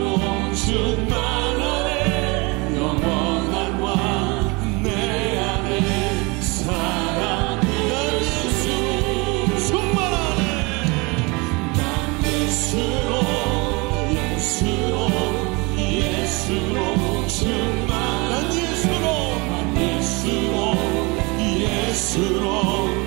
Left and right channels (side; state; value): left; quieter; 27.0 dB